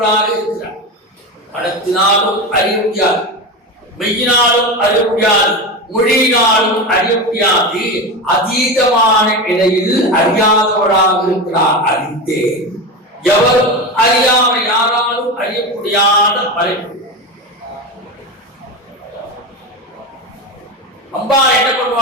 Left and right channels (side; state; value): both; normal; correlation 0.21